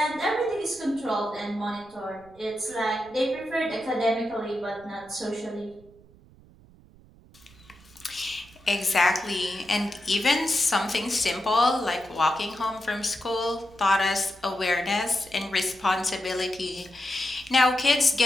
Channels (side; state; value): right; noise; rumble, 25 dB below the sound